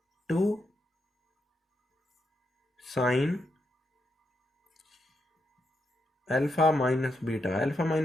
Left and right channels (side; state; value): both; normal; correlation 0.82